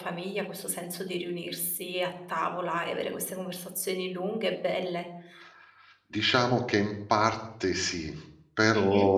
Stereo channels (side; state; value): both; identical; correlation 1.00